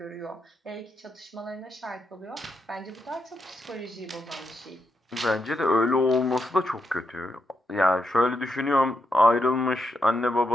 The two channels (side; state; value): both; normal; correlation 0.82